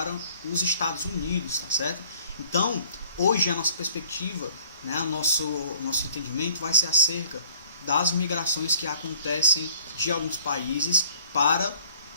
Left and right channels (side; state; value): both; inverted; correlation -0.54